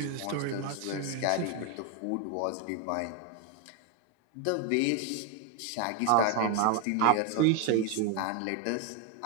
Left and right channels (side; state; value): both; different; correlation 0.01